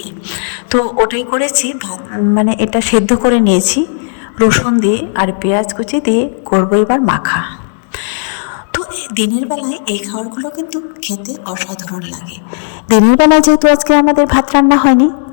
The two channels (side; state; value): right; silent; digital silence